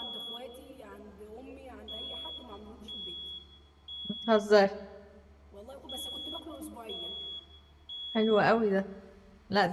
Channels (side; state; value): both; identical; correlation 1.00